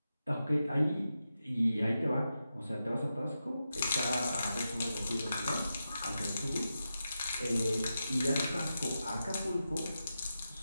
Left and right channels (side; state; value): both; inverted; correlation -0.90